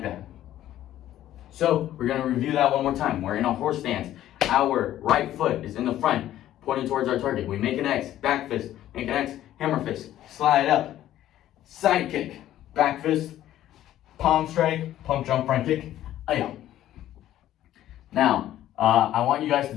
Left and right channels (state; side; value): quieter; right; 12.9 dB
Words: that. So we're gonna review that one more time. We're in a horse stance. Our right foot is in the front, pointing towards our target. We make an X, back fist, make an X, hammer fist, slide up, side kick, back fist, palm strike, pump, jump, front kick, ayah. Now, I want you guys to